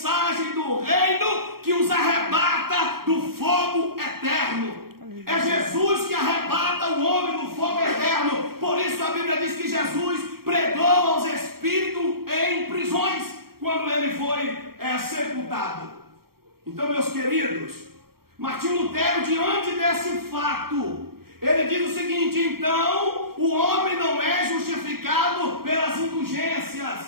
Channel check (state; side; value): late; left; 0.94 ms